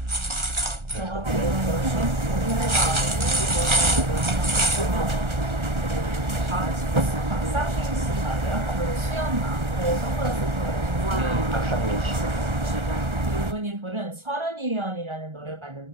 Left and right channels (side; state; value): left; late; 1.4 ms